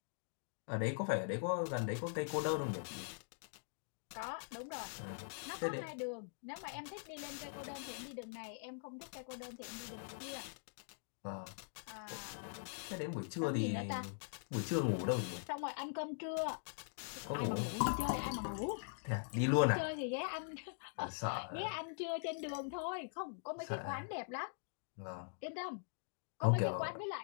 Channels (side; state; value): right; silent; digital silence